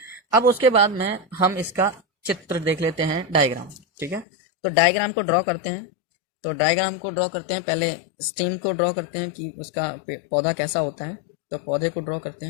अब उसके बाद में हम इसका चित्र देख लेते हैं, डायग्राम, ठीक है। तो डायग्राम को ड्रॉ करते हैं। तो डायग्राम को ड्रॉ करते हैं, पहले स्टेम को ड्रॉ करते हैं कि उसका पौधा कैसा होता है। तो पौधे को ड्रॉ करते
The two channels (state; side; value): drops out; right; at 4.2 s